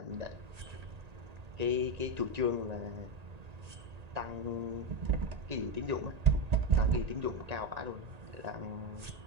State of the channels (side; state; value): left; late; 1.9 ms